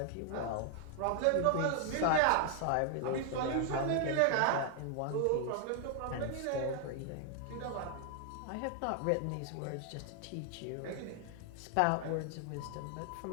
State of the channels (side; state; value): both; different; correlation 0.00